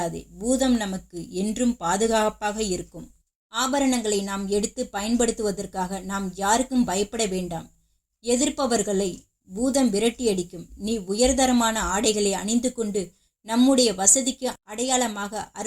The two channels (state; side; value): identical; both; correlation 1.00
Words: பூதம் நமக்கு என்றும் பாதுகாப்பாக இருக்கும். ஆபரணங்களை நாம் எடுத்து பயன்படுத்துவதற்காக நாம் யாருக்கும் பயப்பட வேண்டாம். எதிர்ப்பவர்களை பூதம் விரட்டியடிக்கும். நீ உயர்தரமான ஆடைகளை அணிந்து கொண்டு நம்முடைய வசதிக்கு அடையாளமாக